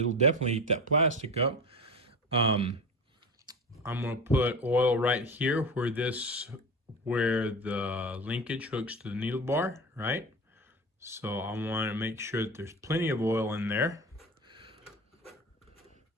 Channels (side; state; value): both; normal; correlation 0.29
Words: definitely eat that plastic up. I'm gonna put oil right here where the linkage hooks to the needle bar, right? So I want to make sure that there's plenty of oil in there.